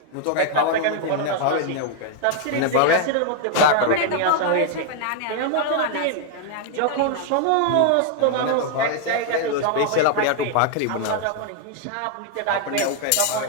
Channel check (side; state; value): both; different; correlation 0.00